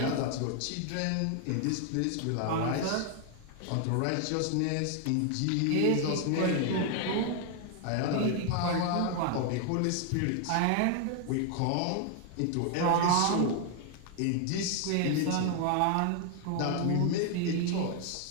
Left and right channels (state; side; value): different; both; correlation 0.00